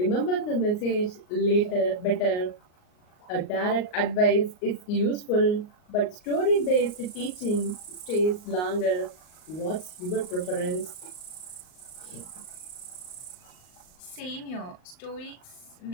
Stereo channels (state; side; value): late; right; 38 ms